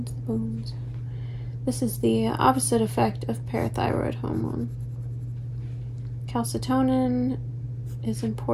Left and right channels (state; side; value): identical; both; correlation 1.00